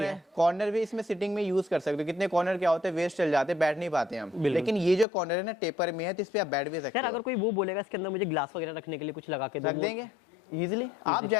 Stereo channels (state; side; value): drops out; right; at 5.1 s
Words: है। कॉर्नर भी इसमें सिटिंग में यूज कर सकते हो। कितने कॉर्नर क्या होते हैं, वेस्ट चल जाते हैं, बैठ नहीं पाते हम। लेकिन ये जो कॉर्नर है ना टेपर में है, तो इस पे आप बैठ भी सकते यार हो। अगर कोई वो बोलेगा इसके अंदर मुझे ग्लास वगैरह रखने के लिए कुछ लगा के दो, रख देंगे इजीली। आप